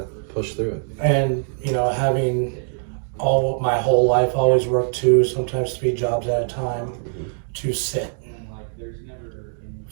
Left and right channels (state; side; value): silent; left; digital silence